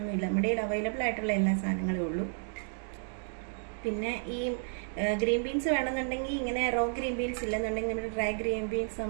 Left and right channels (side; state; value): left; silent; digital silence